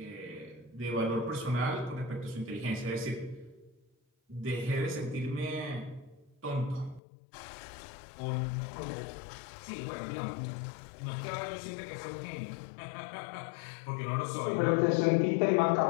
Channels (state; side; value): drops out; right; at 7.0 s